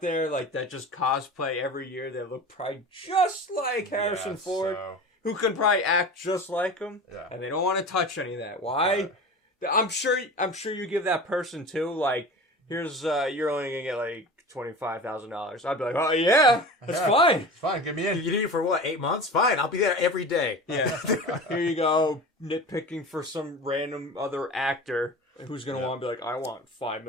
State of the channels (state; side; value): normal; both; correlation 0.34